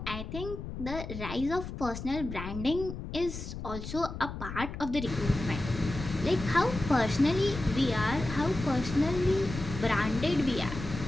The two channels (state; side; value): noise; left; rumble, 8 dB below the sound